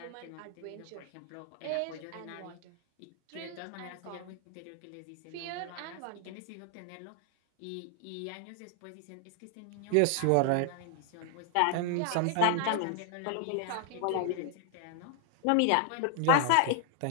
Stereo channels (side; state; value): both; different; correlation 0.00